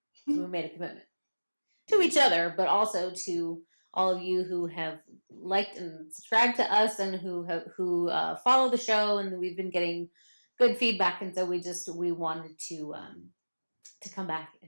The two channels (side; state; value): both; inverted; correlation -1.00